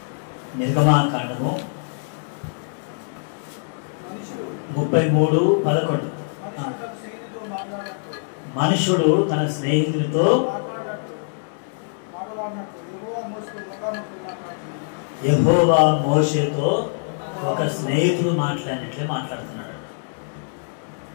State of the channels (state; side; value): silent; right; digital silence